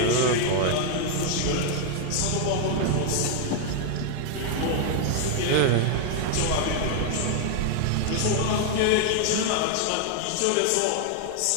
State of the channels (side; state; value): both; different; correlation 0.00